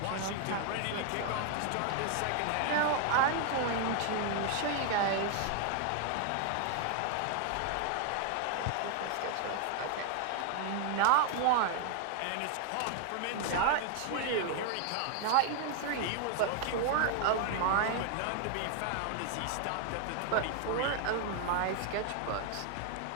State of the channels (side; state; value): both; different; correlation 0.00